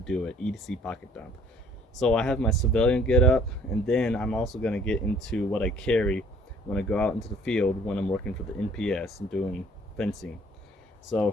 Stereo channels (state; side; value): normal; both; correlation 0.57